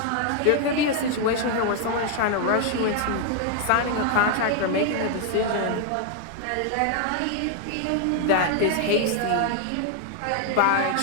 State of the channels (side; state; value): both; different; correlation 0.00